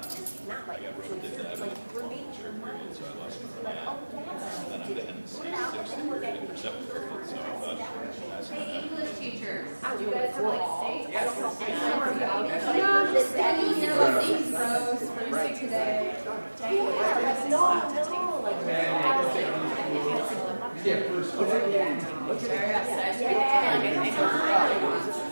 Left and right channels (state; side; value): inverted; both; correlation -1.00